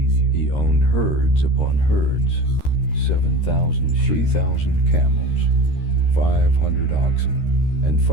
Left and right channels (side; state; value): right; late; 13 ms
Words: He owned herds upon herds, 7,000 sheep, 3,000 camels, 500 oxen, and